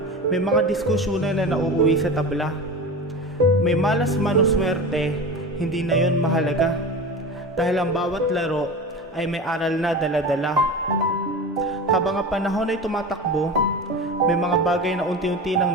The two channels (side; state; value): both; normal; correlation 0.30